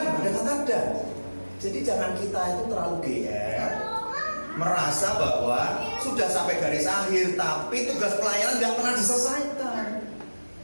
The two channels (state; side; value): inverted; both; correlation -1.00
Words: ada kata dan. Jadi jangan kita itu terlalu GR, merasa bahwa sudah sampai garis akhir, tapi tugas pelayanan tidak pernah diselesaikan.